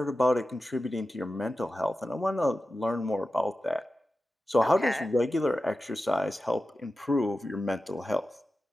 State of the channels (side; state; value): both; normal; correlation 0.93